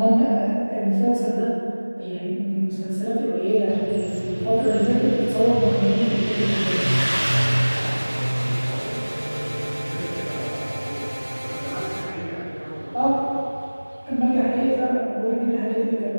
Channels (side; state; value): both; inverted; correlation -1.00